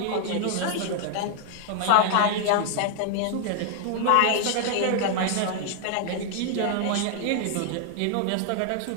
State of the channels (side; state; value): both; different; correlation 0.00